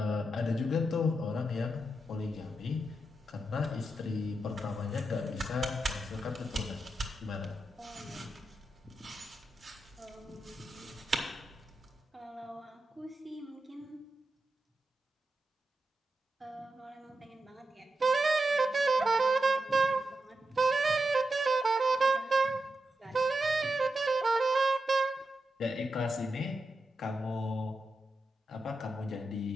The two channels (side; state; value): both; normal; correlation 0.88